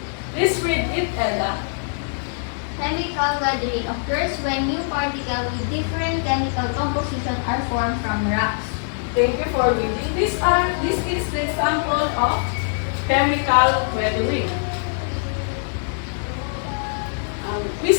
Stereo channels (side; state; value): right; silent; digital silence